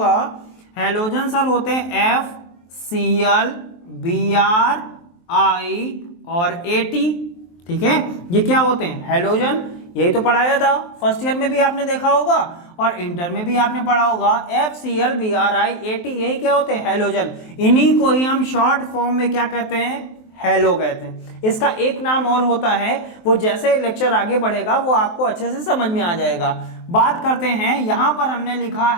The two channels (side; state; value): right; late; 23 ms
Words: हैलोजन सर होते हैं FCl Br I और At। ठीक है, ये क्या होते हैं, हैलोजन। यही तो पढ़ाया था, फर्स्ट ईयर में भी आपने देखा होगा और इंटर में भी आपने पढ़ा होगा, FCl Br I At, यही क्या होते हैं, हैलोजन। इन्हीं को ही हम शॉर्ट फॉर्म में क्या कहते हैं, हैलो कहते हैं। इसका एक नाम और होता है, वो जैसे लेक्चर आगे बढ़ेगा वो आपको अच्छे से समझ में आ जाएगा। बात करते हैं, यहां पर हमने लिखा